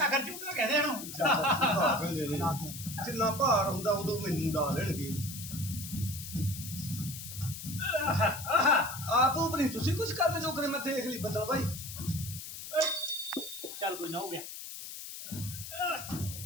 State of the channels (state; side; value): noise; left; hiss, 10 dB below the sound